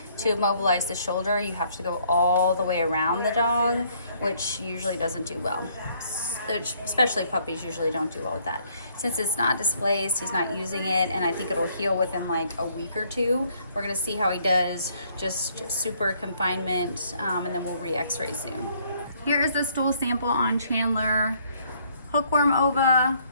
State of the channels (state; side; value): inverted; both; correlation -0.65